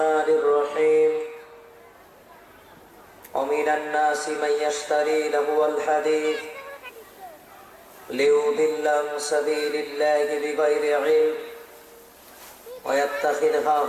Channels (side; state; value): both; identical; correlation 1.00